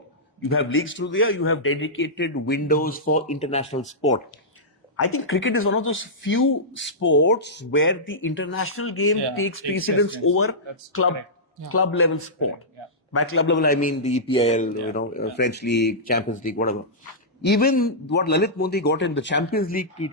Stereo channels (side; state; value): both; normal; correlation -0.13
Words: You have leagues through there, you have dedicated windows for international sport. I think cricket is one of those few sports where the international game takes precedence over club level sport. Yeah. By club level, I mean the EPL, French League, Champions League, whatever. Even what Lalit Modi got in the Champions League